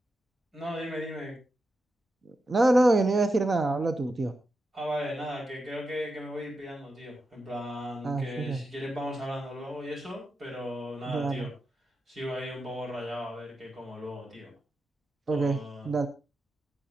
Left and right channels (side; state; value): both; normal; correlation 0.88